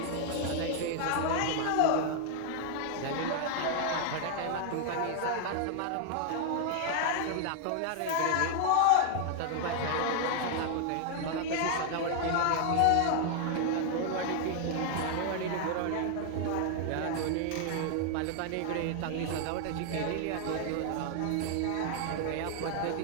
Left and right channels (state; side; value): different; both; correlation 0.00